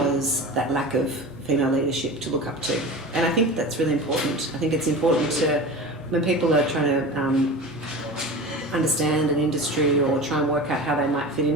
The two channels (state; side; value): normal; both; correlation 0.32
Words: that lack of female leadership to look up to. And I think that's really important. I think it's important to, when people are trying to understand an industry or try and work out how they might fit